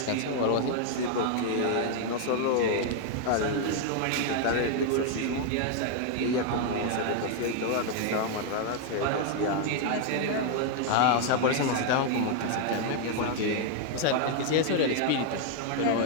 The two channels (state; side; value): different; both; correlation 0.00